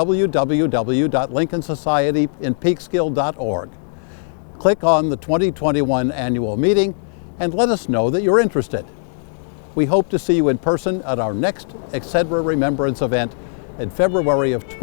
Click on the 2021 annual meeting and let us know that you're interested. We hope to see you in person at our next Excedra Remembrance event in February of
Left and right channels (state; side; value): silent; right; digital silence